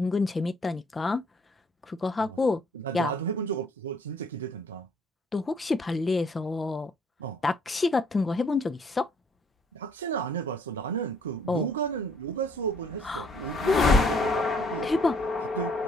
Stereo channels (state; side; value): normal; both; correlation 0.64